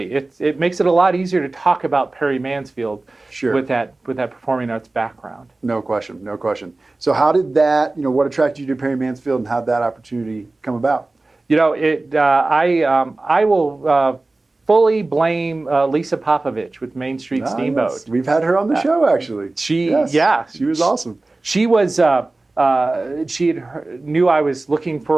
It makes it a lot easier to talk about Perry Mansfield with that performing arts background. No question, no question. So how did that, what attracted you to Perry Mansfield, and how did that opportunity come about? I will fully blame Lisa Popovich with Main Street Steamboat. We've had her on the show, actually. She was awesome. she was knew I was looking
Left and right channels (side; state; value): left; quieter; 3.1 dB